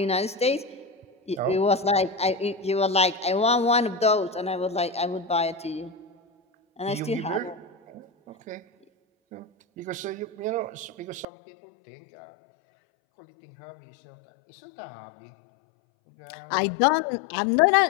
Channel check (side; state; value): right; drops out; at 11.2 s